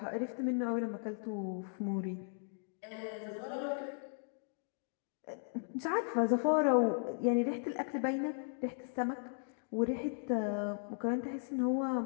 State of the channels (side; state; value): right; silent; digital silence